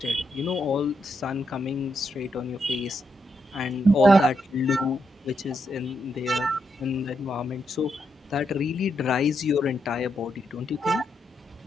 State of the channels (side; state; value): both; normal; correlation 0.81